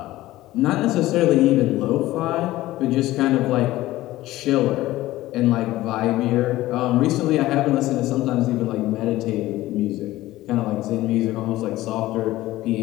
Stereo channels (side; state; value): right; quieter; 16.5 dB